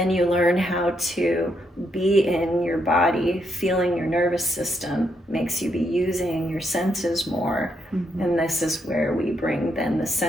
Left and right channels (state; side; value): normal; both; correlation 0.77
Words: you learn how to be in your body, feeling your nervous system, makes you be using your senses more. And this is where we bring then the